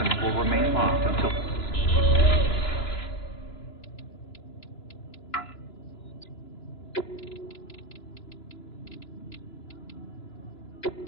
will remain locked until...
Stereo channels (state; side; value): late; right; 2.9 ms